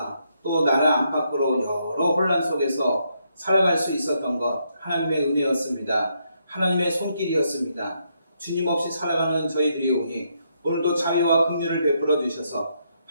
또 나라 안팎으로 여러 혼란 속에서 살아갈 수 있었던 것 하나님의 은혜였습니다. 하나님의 손길이었습니다. 주님 없이 살아가는 저희들이 오니 오늘도 자비와 긍휼을 베풀어 주셔서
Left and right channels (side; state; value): both; inverted; correlation -0.77